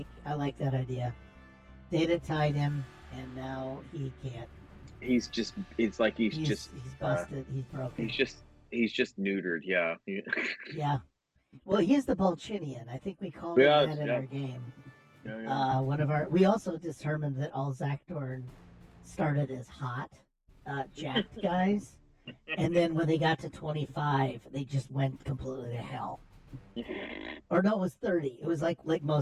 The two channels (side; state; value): both; identical; correlation 1.00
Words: like that idea. Data tied him, and now he can't. He's busted. He's broken. He's just neutered. Yeah. Yeah. Well, he's the Bolchinian. I think we called him that in our game. Yeah. We also determined that all Zakdorn started as hot, jacked guys, and then when they got to 25, they just went completely to hell. Or no, it was 30. It was like